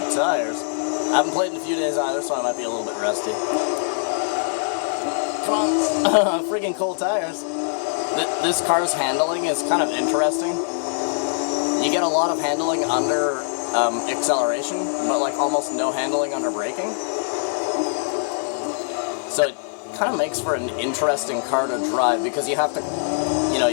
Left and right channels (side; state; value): right; silent; digital silence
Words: tires. I haven't played in a few days either, so I might be a little bit rusty. Come on, freaking cold tires. This car's handling is kind of interesting. You get a lot of handling under acceleration, but like almost no handling under braking. So it kind of makes for an interesting car to drive, because you have to, you know,